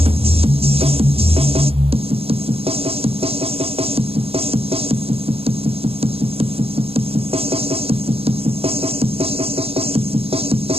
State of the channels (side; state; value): left; late; 0.28 ms